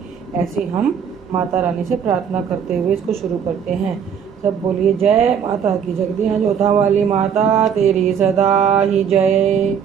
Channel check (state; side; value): quieter; left; 7.6 dB